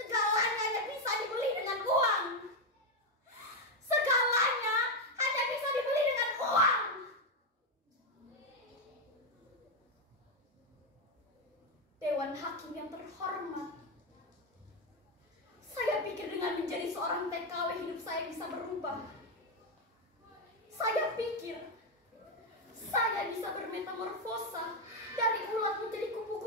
hanya bisa dibeli dengan uang. Segalanya hanya bisa dibeli dengan uang. Dewan Hakim yang terhormat, saya pikir dengan menjadi seorang TKW hidup saya bisa berubah. Saya pikir saya bisa bermetamorfosa dari ulat menjadi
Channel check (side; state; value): both; normal; correlation 0.06